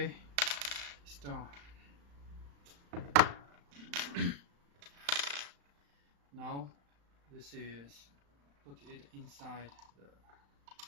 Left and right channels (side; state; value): left; late; 35 ms